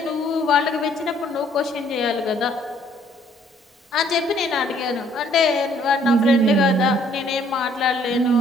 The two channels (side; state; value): both; normal; correlation 0.63